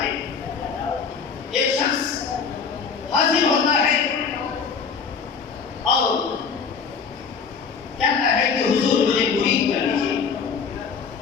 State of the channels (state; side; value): quieter; right; 5.9 dB